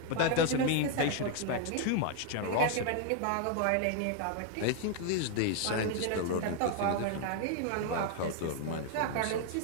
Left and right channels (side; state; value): both; different; correlation 0.00